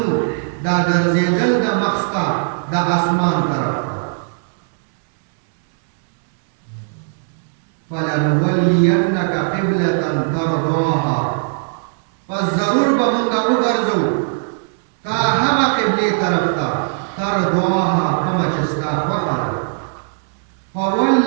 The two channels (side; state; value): left; silent; 67 dB below the other